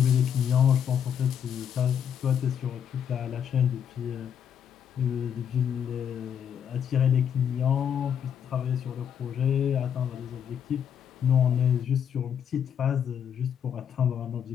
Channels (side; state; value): right; quieter; 8.4 dB